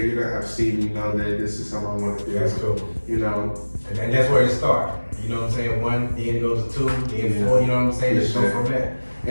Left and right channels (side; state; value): both; inverted; correlation -1.00